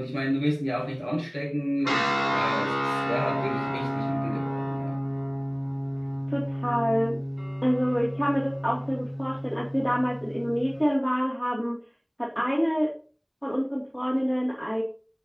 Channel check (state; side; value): identical; both; correlation 1.00